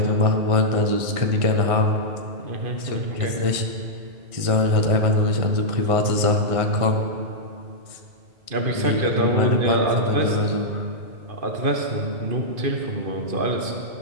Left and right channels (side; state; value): left; late; 1.6 ms